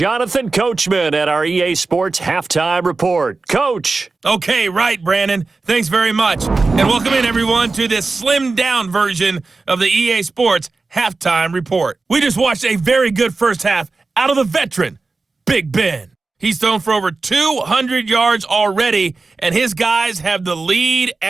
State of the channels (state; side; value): quieter; left; 3.8 dB